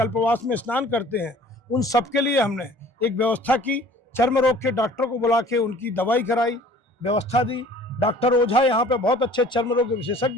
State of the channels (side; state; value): left; late; 1.4 ms